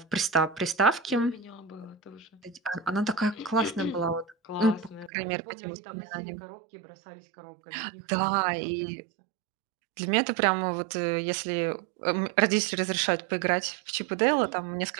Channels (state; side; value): drops out; left; at 5.1 s